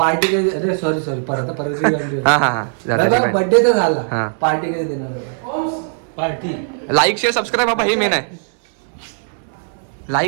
कधी अरे सॉरी परत हा हा हा बर्थडे तर हा. झाला. पार्टी कधी देणार? पार्टी लाईक शेअर सबस्क्राईब बाबा हे मेन आहे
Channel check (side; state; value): left; silent; digital silence